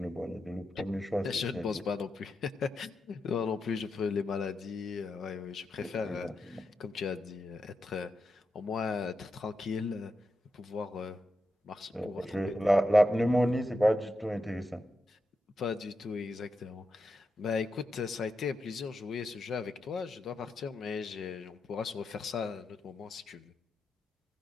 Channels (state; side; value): normal; both; correlation 0.87